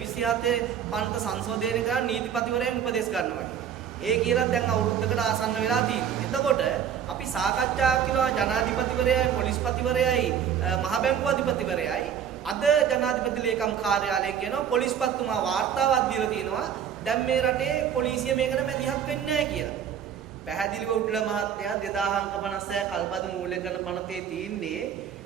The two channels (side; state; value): left; quieter; 8.7 dB